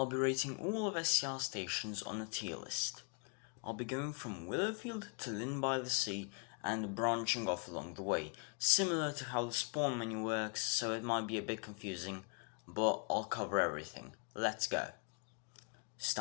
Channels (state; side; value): quieter; right; 36.7 dB